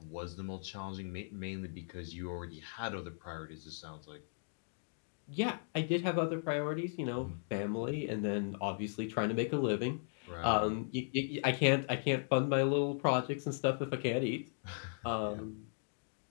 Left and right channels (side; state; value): right; silent; digital silence